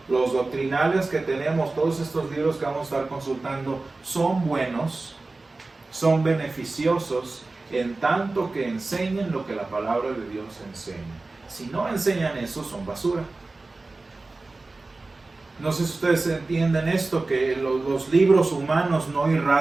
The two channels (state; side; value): quieter; left; 3.4 dB